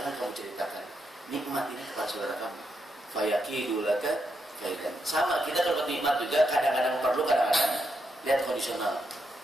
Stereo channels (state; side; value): normal; both; correlation 0.81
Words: kamu ceritakan nikmat ini kepada saudara kamu. Fayakidu laka kaidan. Sama kita kalau nikmat juga kadang-kadang perlu, kadang-kadang lihat kondisional.